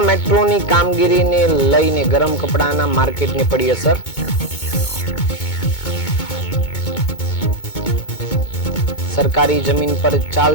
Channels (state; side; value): late; right; 2.2 ms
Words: મેટ્રોની કામગીરીને લઈને ગરમ કપડાના માર્કેટને પડી અસર। સરકારી જમીન પર